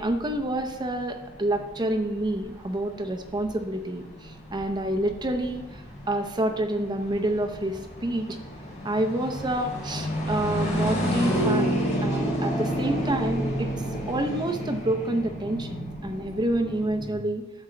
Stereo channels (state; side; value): normal; both; correlation 0.66